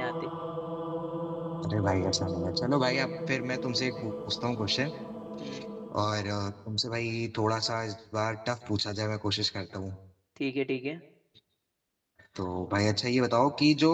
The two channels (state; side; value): identical; both; correlation 1.00